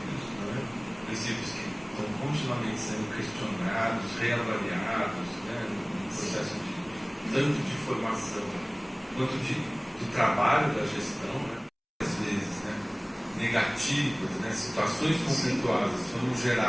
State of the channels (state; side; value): identical; both; correlation 1.00